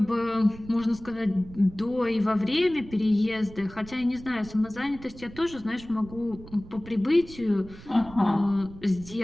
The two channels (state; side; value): noise; right; rumble, 17 dB below the sound